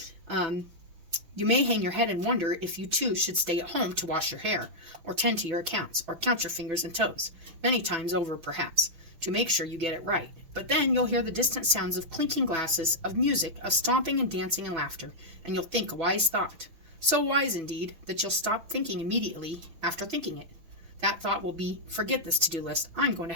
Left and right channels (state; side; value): late; left; 6.1 ms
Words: You may hang your head and wonder if you too should stay at home to wash your hair, or tend to your accounts, or count your fingers and toes, many times over perhaps, to make sure you get it right. But then you'll hear the distant sounds of clinking glasses, of music, of stomping and dancing and laughter, and you'll think a wise thought. So wise, indeed, that you'll stop thinking immediately after thinking it. That thought will be, forget this to-do list, I'm going to